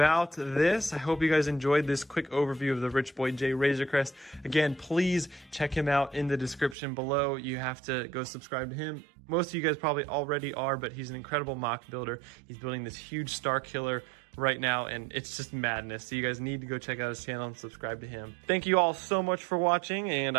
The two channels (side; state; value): left; drops out; at 6.8 s